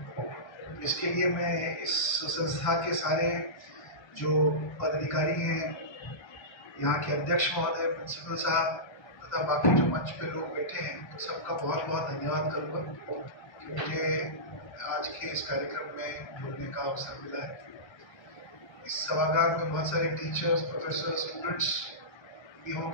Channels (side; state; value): right; late; 1.3 ms